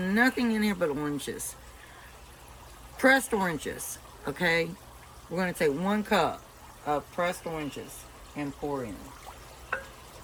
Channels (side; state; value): both; identical; correlation 1.00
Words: in here but oranges. Pressed oranges, okay? We're going to take 1 cup of pressed oranges and pour in.